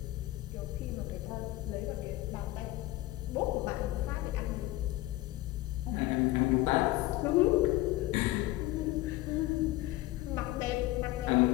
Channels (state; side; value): quieter; right; 17.5 dB